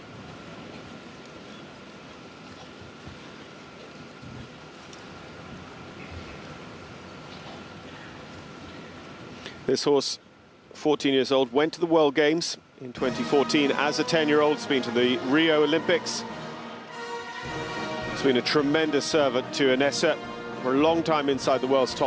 This horse, 14 years old, went to the World Games in 2014 as a 10-year-old. It's been to the Rio Olympics. It's been a tremendous servant to Inessa for a long time inside the world's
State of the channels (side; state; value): both; identical; correlation 1.00